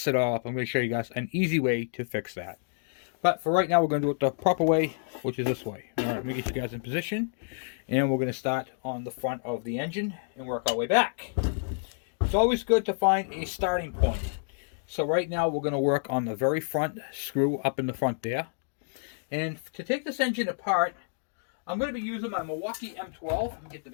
it all up, I'm going to show you guys an easy way to fix that. But for right now, we're going to do it the proper way, which is this way. All right, let me get you guys in position, and we're going to start on the front of the engine and work our way back. It's always good to find a starting point. So right now, we're going to work on the very front screw up in the front there. And to take this engine apart, I'm going to be using my Milwaukee M12. Let me get the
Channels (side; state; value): right; silent; digital silence